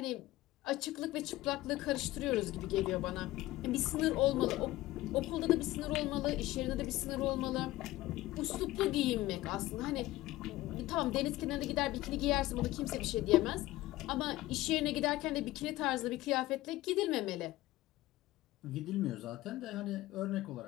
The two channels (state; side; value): quieter; right; 17.1 dB